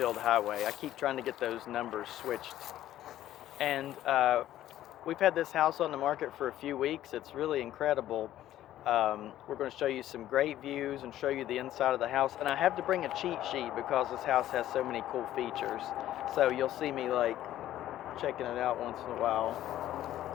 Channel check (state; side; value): quieter; right; 13.0 dB